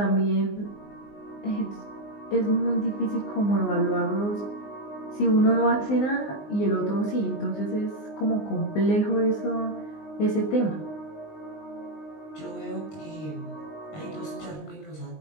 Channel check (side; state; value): right; late; 19 ms